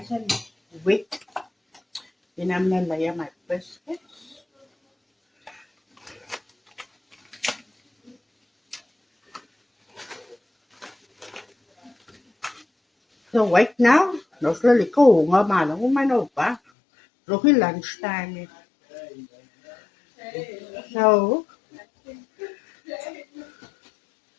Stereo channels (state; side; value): drops out; right; at 16.6 s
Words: and wet. Then I'm gonna layer my biscuits. So wait now. Nog lekker honger, maar nog mijn opa. Nog in lunchtime. So